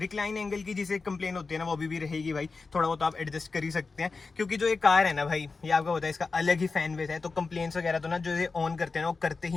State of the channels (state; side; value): quieter; right; 4.2 dB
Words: एंगल की जिसे कंप्लेन होती है ना, वो भी रहेगी भाई। थोड़ा बहुत आप एडजस्ट कर ही सकते हैं, क्योंकि जो ये कार है ना भाई, ये आपको पता है इसका अलग ही फैन बेस है। तो कंप्लेन्स वगैरह तो ना जो ये ऑन करते हैं ना, वो करते